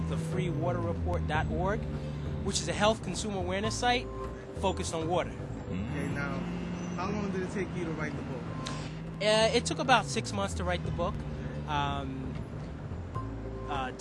thefreewaterreport.org, which is a health consumer awareness site focused on water. Okay, now, how long did it take you to write the book? It took about 6 months to write the book.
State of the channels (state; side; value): identical; both; correlation 1.00